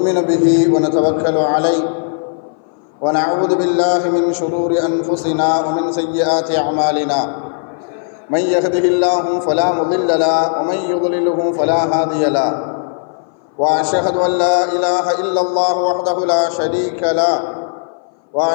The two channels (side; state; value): right; silent; 60 dB below the other